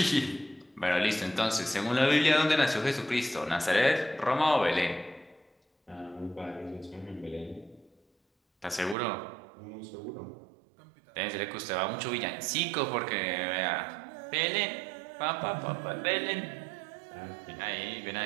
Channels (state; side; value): drops out; left; at 9.0 s